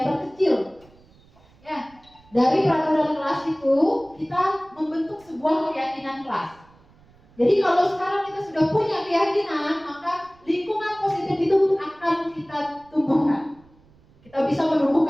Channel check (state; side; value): noise; right; rumble, 29 dB below the sound